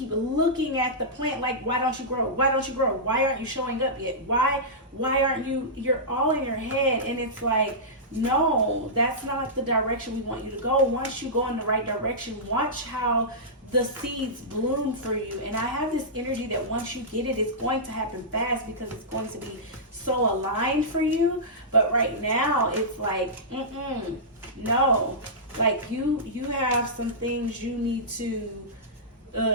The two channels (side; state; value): both; normal; correlation -0.15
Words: looking at the plant like, why don't you grow? Why don't you grow? Why aren't you showing up yet? Why aren't you? You're all in your head, and it's like, no, that's not the direction we want you to go. Once you go in the right direction, watch how the seeds bloom for you. And I have this energy that once you get it, it's going to happen fast because it's going to be so aligned for you. But right now, it's like, no. Like, you have some things you need to